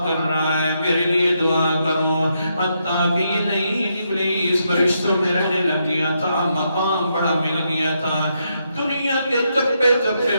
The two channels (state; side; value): inverted; both; correlation -0.80